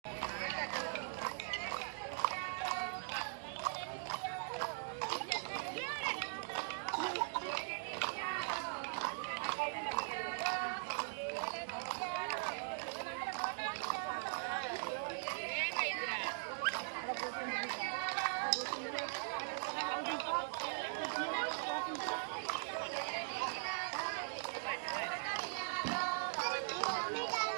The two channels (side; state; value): left; silent; digital silence